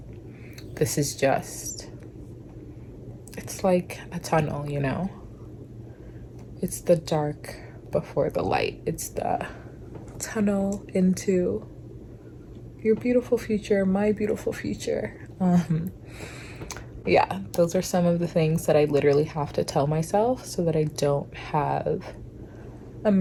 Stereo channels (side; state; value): both; identical; correlation 1.00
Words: this is just, it's like a tunnel, you know? It's the dark before the light. It's the tunnel into your beautiful future, my beautiful future. Yeah, those are some of the things that I literally have to tell myself so that I don't have a